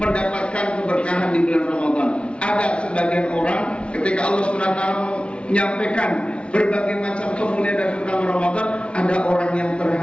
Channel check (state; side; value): late; right; 0.059 ms